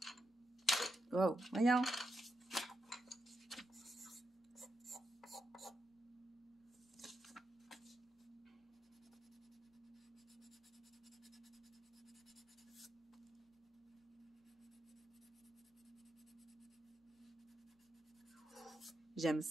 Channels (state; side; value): normal; both; correlation 0.85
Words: Wow, voyons. J'aime